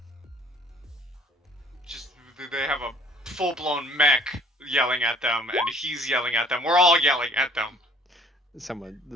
Just they have a full blown mech yelling at them, and he's yelling at them. We're all yelling at them. Some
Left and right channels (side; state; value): both; normal; correlation 0.56